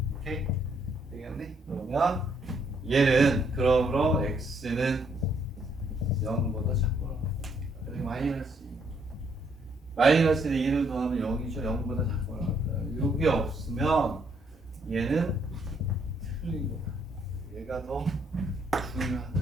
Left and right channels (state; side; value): normal; both; correlation 0.71